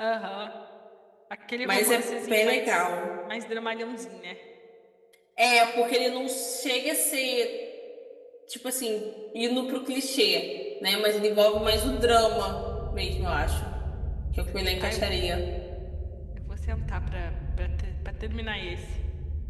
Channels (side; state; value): both; identical; correlation 1.00